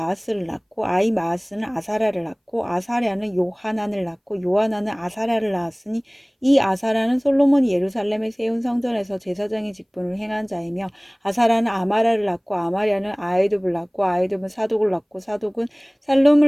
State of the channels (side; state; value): both; identical; correlation 1.00